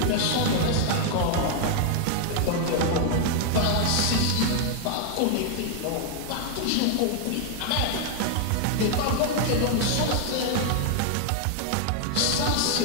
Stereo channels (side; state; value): both; different; correlation 0.00